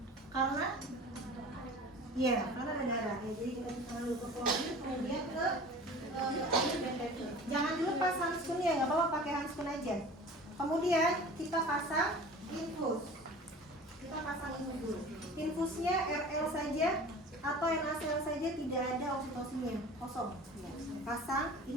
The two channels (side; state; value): both; normal; correlation 0.41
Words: Karena Iya, karena ada darah. Ya, jadi kita tangan dulu ke chlorine, kemudian ke air BTT. Jangan dilepas handscoonnya, nggak apa-apa pakai handscoon aja. Kemudian kita pasang infus. Kita pasang infus dulu. Infusnya RL saja atau NaCl saja, tidak ada oksitosinnya, kosong. Ya. Pasang